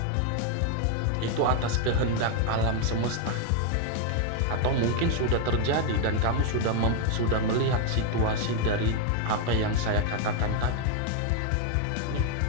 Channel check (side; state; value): both; different; correlation 0.01